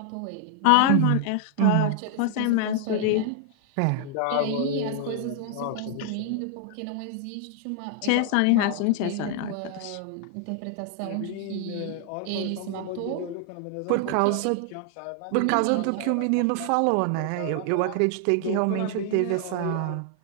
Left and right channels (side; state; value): both; different; correlation 0.00